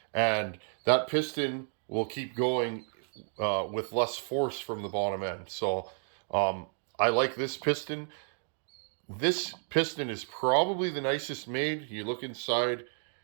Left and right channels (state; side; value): silent; left; 57 dB below the other